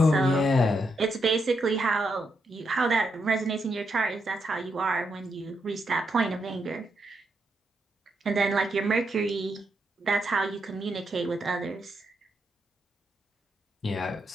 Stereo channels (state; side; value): normal; both; correlation 0.81